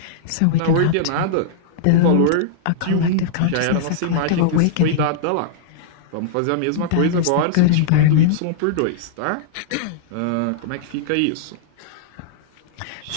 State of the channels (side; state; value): both; different; correlation -0.02